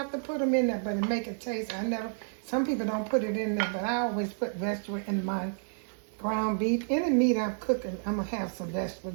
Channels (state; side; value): silent; left; digital silence